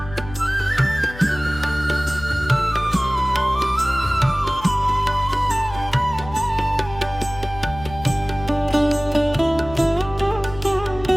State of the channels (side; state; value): left; noise; hum, 14 dB below the sound